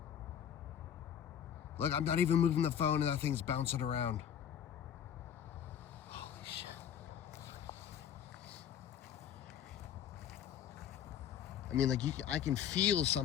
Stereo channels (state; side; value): quieter; right; 9.2 dB